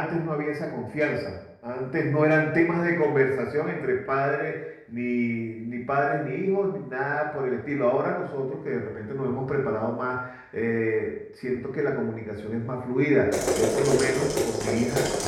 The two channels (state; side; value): identical; both; correlation 1.00